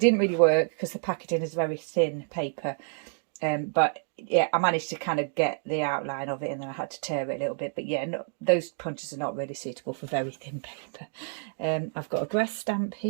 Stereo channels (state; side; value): silent; left; digital silence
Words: really work because the packaging is very thin paper, but yeah, I managed to kind of get the outline of it, and then I had to tear it a little bit. But yeah, no, those punches are not really suitable for very thin paper. I've got a grass stamp